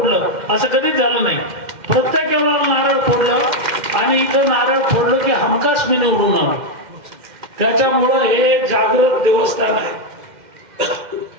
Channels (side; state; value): left; late; 2.1 ms